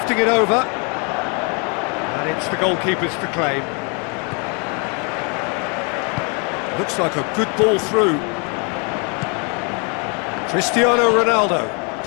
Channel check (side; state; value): right; quieter; 35.1 dB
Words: it over. And It's the goalkeepers to claim. Looks like a good ball through. Cristiano Ronaldo